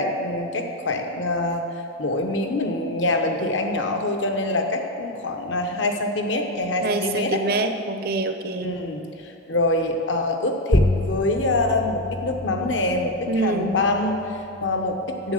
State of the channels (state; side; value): normal; both; correlation 0.05